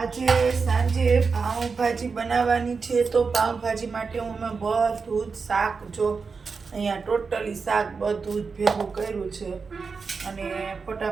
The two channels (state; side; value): quieter; left; 5.0 dB